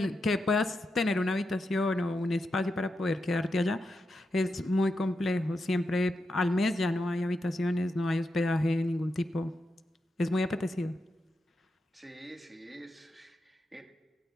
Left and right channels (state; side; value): normal; both; correlation 0.86